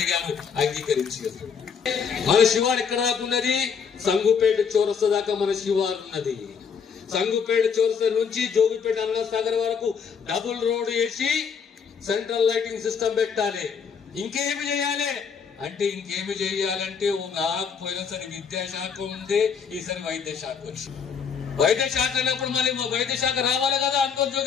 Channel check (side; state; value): right; quieter; 6.5 dB